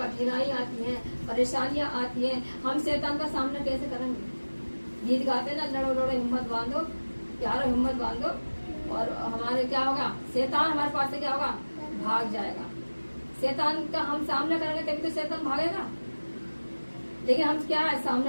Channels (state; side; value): inverted; both; correlation -1.00